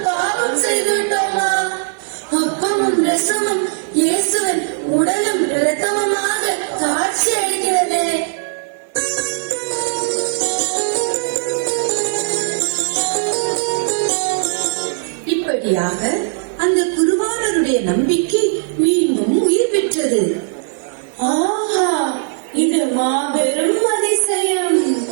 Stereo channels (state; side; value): silent; left; 61 dB below the other